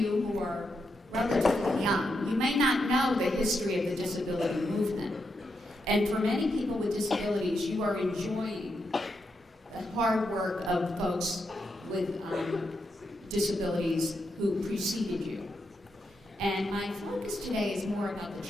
who are relatively young, you may not know the history of the disability movement. And for many people with disabilities, you are enjoying the hard work of folks with disabilities who preceded you. And my focus today is more about the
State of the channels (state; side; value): normal; both; correlation 0.83